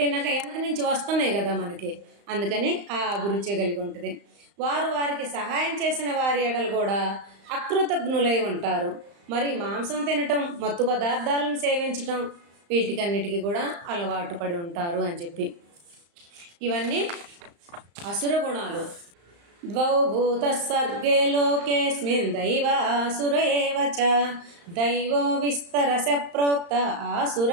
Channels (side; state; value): left; late; 35 ms